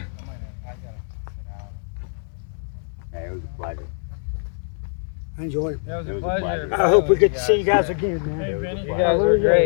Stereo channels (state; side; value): silent; right; 63 dB below the other